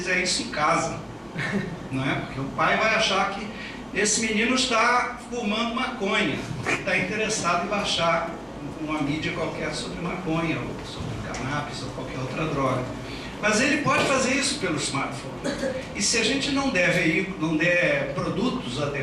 isso em casa, não é? Porque o pai vai achar que esse menino está fumando maconha, está interessado em baixar uma mídia qualquer sobre maconha, ou sobre cannabis, ou qualquer outra droga. Mas ele pode fazer isso pelo smartphone. E se a gente não der produtos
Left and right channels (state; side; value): identical; both; correlation 1.00